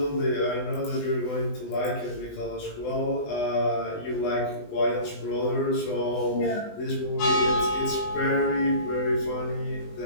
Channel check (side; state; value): right; late; 20 ms